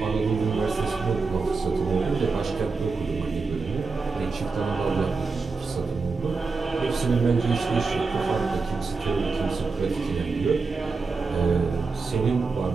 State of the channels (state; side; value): quieter; left; 4.4 dB